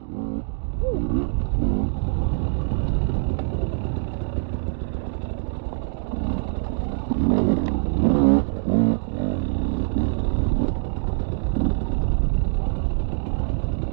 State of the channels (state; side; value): silent; left; 63 dB below the other